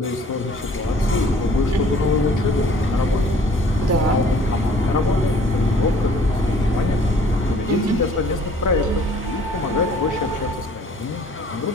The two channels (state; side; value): normal; both; correlation 0.55